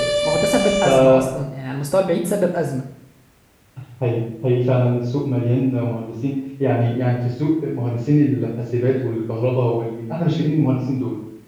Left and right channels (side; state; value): both; identical; correlation 1.00